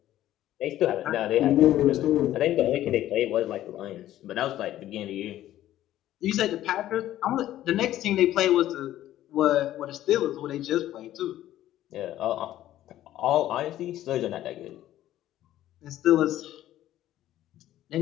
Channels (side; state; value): right; quieter; 13.3 dB